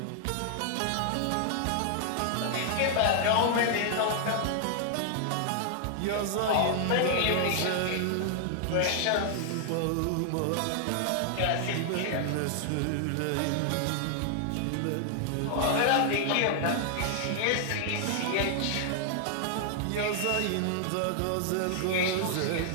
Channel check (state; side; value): different; both; correlation 0.00